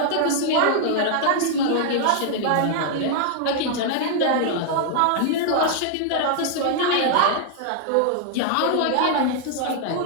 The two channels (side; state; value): both; different; correlation 0.00